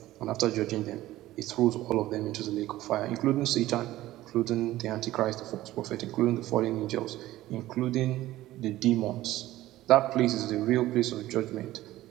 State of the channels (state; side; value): quieter; left; 15.7 dB